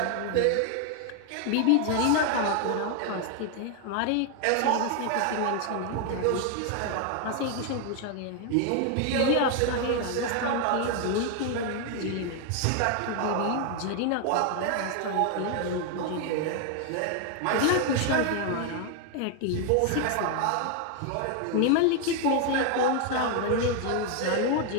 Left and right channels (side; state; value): both; different; correlation 0.00